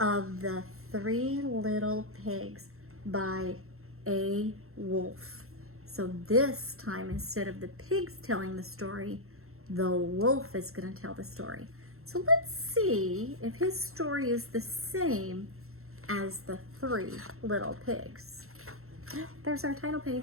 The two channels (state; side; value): late; left; 0.62 ms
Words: the Three Little Pigs by A. Wolf. So this time, instead of the pigs telling the story, the wolf is going to tell the story. So let's see if his story is the same as the Three Little Pigs. There's our title